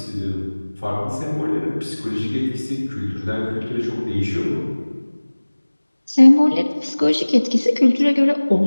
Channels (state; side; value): inverted; both; correlation -1.00